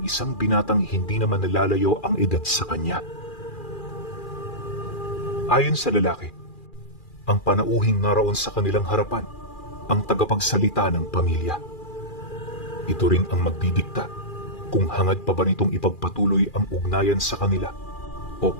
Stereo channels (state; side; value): late; right; 2.4 ms